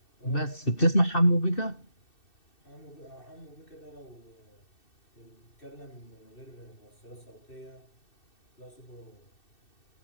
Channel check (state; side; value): late; right; 2.6 ms